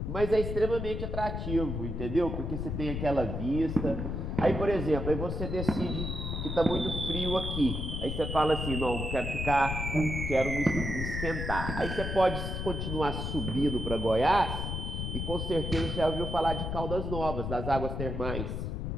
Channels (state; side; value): noise; left; rumble, 3 dB below the sound